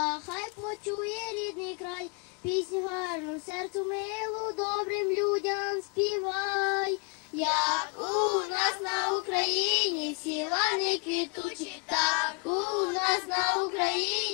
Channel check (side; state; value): right; quieter; 33.4 dB